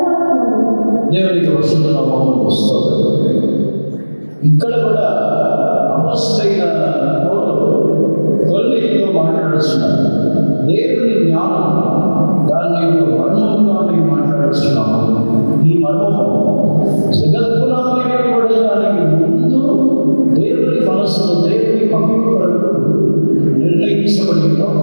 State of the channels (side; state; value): both; inverted; correlation -1.00